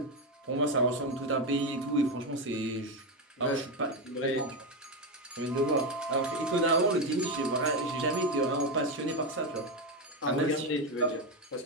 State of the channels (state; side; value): normal; both; correlation 0.10